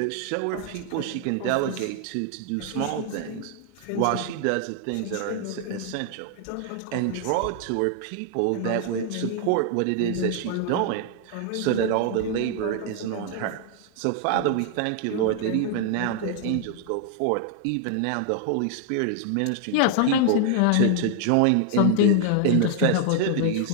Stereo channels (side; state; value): both; different; correlation 0.00